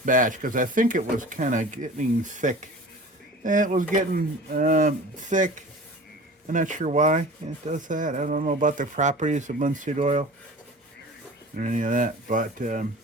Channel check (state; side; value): normal; both; correlation 0.39